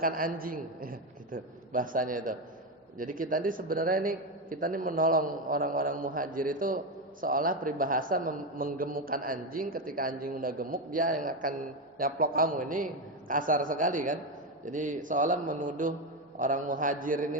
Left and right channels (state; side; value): normal; both; correlation 0.11